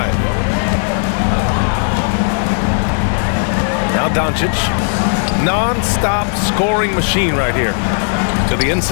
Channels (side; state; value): right; silent; 68 dB below the other